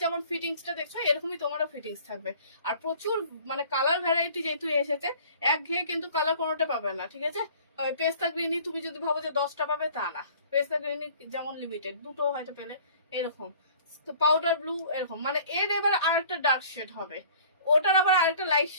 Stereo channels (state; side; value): inverted; both; correlation -0.50